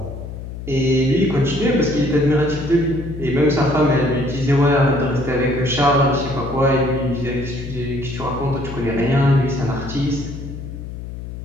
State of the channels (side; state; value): left; noise; hum, 10 dB below the sound